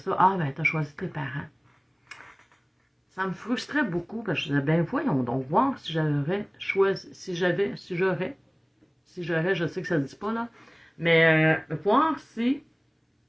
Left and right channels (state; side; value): identical; both; correlation 1.00